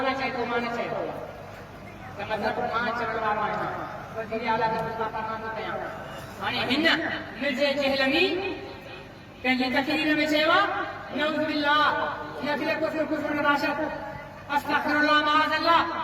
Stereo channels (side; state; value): both; identical; correlation 1.00